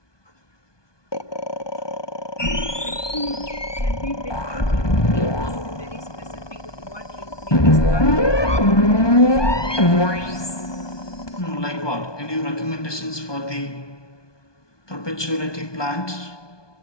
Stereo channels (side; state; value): right; late; 1.2 ms